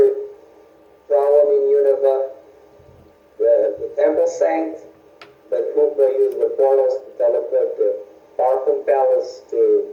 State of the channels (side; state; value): both; identical; correlation 1.00